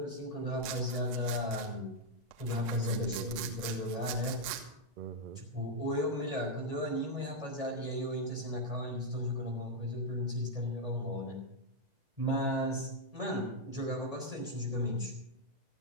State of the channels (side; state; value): left; late; 2.0 ms